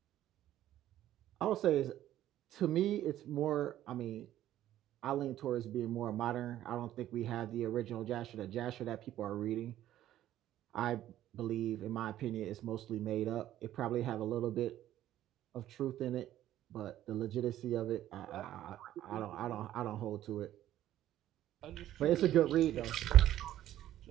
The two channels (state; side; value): quieter; left; 12.9 dB